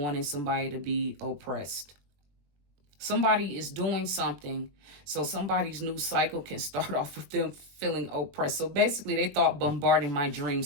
somebody to be oppressed. Somebody is doing something so somebody's new cycle can start off with them feeling oppressed. So basically, they thought bombarding my dream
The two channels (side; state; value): left; late; 21 ms